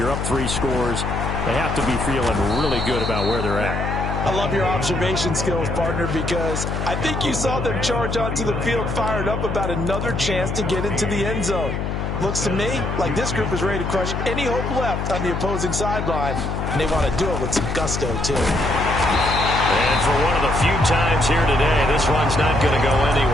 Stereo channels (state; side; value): noise; left; hum, 2 dB below the sound